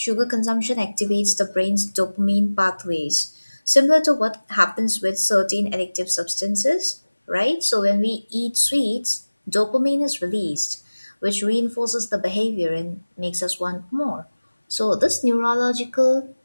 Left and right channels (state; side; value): inverted; both; correlation -1.00